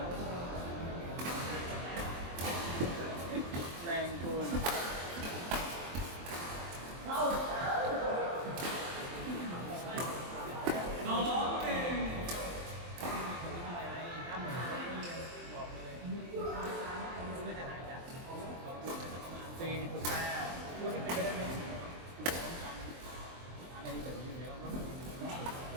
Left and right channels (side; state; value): left; late; 23 ms